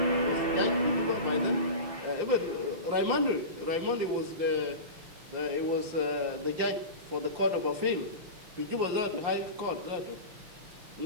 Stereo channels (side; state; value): left; late; 5.7 ms